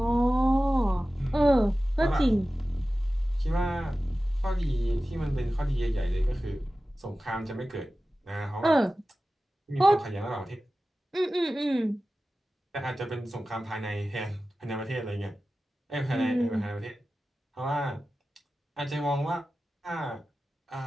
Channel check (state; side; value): normal; both; correlation 0.95